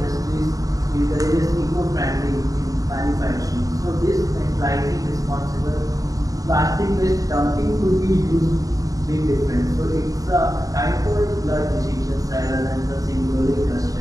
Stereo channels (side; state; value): left; late; 0.17 ms